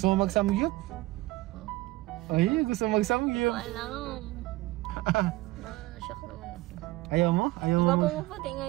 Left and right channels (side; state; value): left; quieter; 19.2 dB